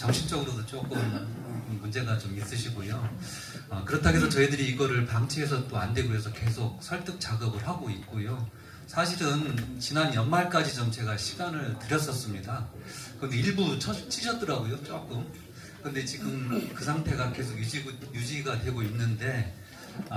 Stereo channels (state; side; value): identical; both; correlation 1.00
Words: 조금 문제가 좀 있으시고요. 그렇다고 해서 저희들이 이거를 방치해서 또 안 되고 해서 계속 설득 작업을 하고 있고요. 사실은 지난 연말까지 좀 제가 시간을 드렸었습니다. 근데 일부 치셨더라고요, 조금. 근데 지금 그 상태가 계속 유지가 되고 있는데,